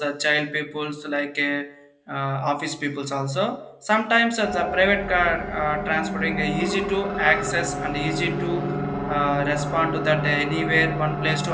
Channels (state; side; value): identical; both; correlation 1.00